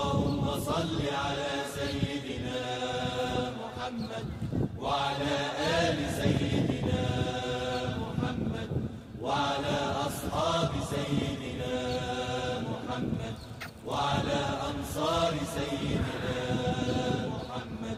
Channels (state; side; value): identical; both; correlation 1.00